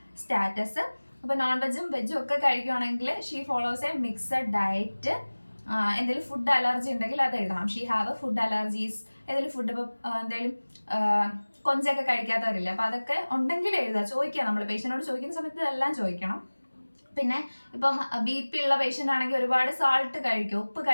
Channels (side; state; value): both; inverted; correlation -1.00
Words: status. അപ്പോൾ നോൺ വെജും വെജും ഒക്കെ കഴിക്കുകയാണെങ്കിൽ she follows A mixed diet. എന്തെങ്കിലും ഫുഡ് അലർജി ഉണ്ടെങ്കിൽ അത് എഴുതണം. She have food allergies. ഏതെങ്കിലും ഫുഡ് ഇപ്പോൾ എന്തെങ്കിലും കൊഞ്ചൊക്കെ കഴിക്കാത്തവരില്ല, അപ്പോൾ അതൊക്കെ ഉണ്ടെങ്കിൽ എഴുതുക, ചോദിക്കുക. നമ്മൾ പേഷ്യനോട് ചോദിക്കുന്ന സമയത്ത് ഇതെല്ലാം ചോദിക്കണം. പിന്നെ ഇപ്പം BP ഉള്ള പേഷ്യൻ്റ് ആണെങ്കിൽ ഒരുപാട് സാൾട്ട് കഴിക്കും, ഉപ്പ്